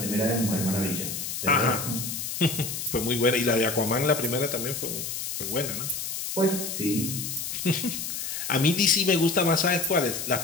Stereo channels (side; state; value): left; noise; hiss, 5 dB below the sound